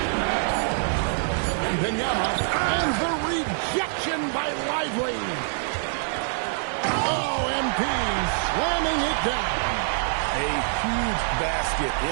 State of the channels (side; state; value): left; silent; digital silence